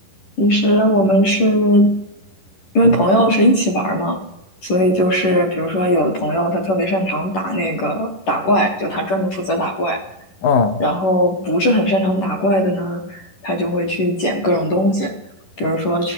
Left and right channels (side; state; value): right; late; 11 ms